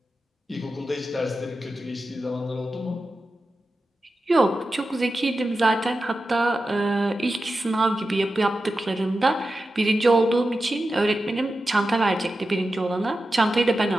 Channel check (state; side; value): normal; both; correlation 0.92